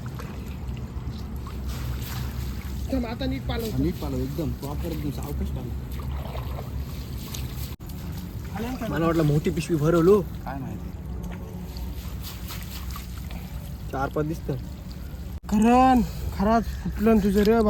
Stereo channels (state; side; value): identical; both; correlation 1.00